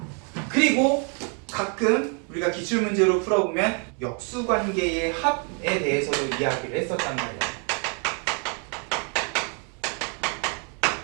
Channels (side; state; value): left; quieter; 38.3 dB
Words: 그리고 가끔 우리가 기출문제로 풀어보면 역수관계의 합에 대해서도 이야기를 했었단 말이야.